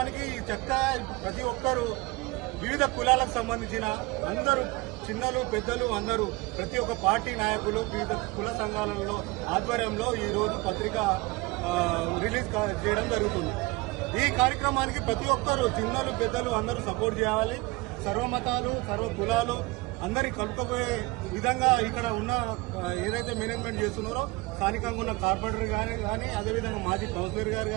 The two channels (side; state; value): left; quieter; 23.0 dB